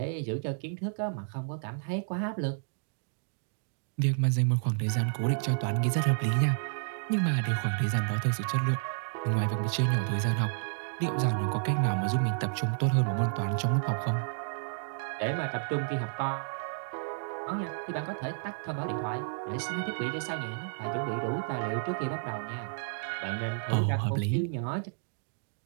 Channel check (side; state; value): left; silent; digital silence